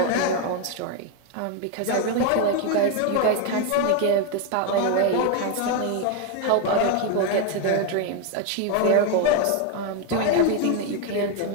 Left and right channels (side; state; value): both; different; correlation 0.01